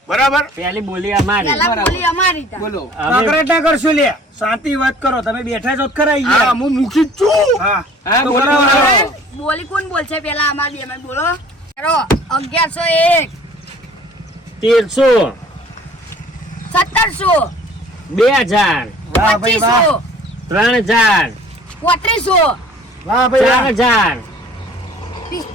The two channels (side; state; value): both; normal; correlation 0.51